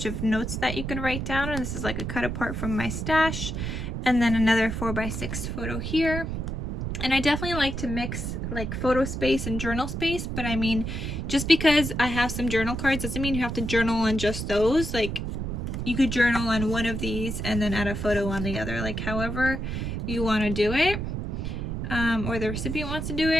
of notes that you can write down, and this is like a cut apart from my stash. And then another 4x6 photo here. And I definitely like to mix like photo space and journal space, but I mean, just because I have some journal cards doesn't mean you have to journal on just those. Like, you could journal on one of these and then add a photo on the other, like however you want to do it, or the recipient wants to do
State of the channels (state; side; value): noise; right; rumble, 4 dB below the sound